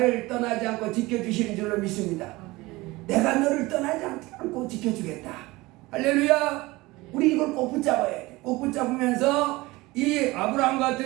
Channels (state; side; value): quieter; left; 21.0 dB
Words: 떠나지 않고 지켜주시는 줄로 믿습니다. 내가 너를 떠나지 않고 지켜주겠다. 할렐루야. 우리 이걸 꼭 붙잡아야 돼. 꼭 붙잡으면서 이 아브라함